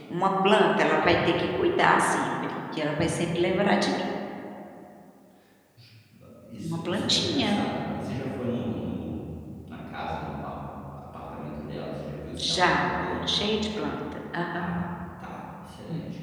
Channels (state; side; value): identical; both; correlation 1.00